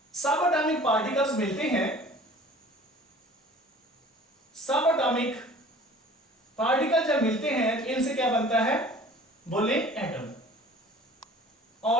सब एटॉमिक पार्टिकल्स मिलते हैं. सब एटॉमिक पार्टिकल जब मिलते हैं तो इनसे क्या बनता है, बोले एटम.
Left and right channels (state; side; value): normal; both; correlation 0.47